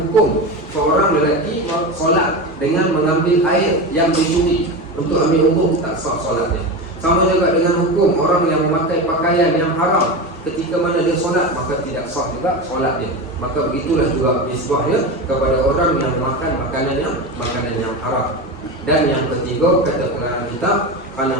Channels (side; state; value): both; normal; correlation 0.22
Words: seorang lelaki solat dengan mengambil air yang dicuri untuk ambil wudu, tak sah solatnya. Sama juga dengan hukum orang yang memakai pakaian yang haram, ketika mana dia solat maka tidak sah juga solat dia. Maka begitulah juga nisbahnya kepada orang yang makan makanan yang haram. Dan yang ketiga, kata pengarang kitab, kerana